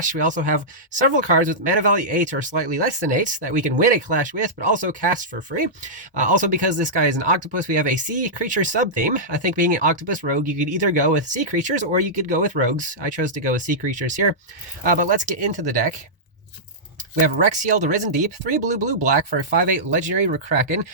We also have several cards with mana value 8 or slightly less than 8 that we can win a clash with, but also cast for free. Also, because this guy is an octopus, we have a sea creature sub-theme. I think being an octopus rogue, you could either go with sea creatures or you could go with rogues. I chose to go with sea creatures here. But let's get into the deck. We have Rexiel, the Risen Deep, 3 blue-blue-black for a 5/8 Legendary Kraken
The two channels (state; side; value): normal; both; correlation -0.13